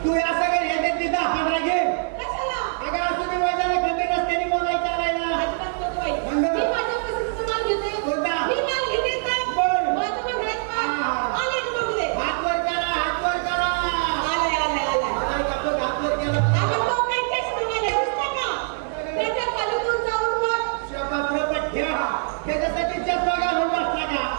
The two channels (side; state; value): left; silent; 57 dB below the other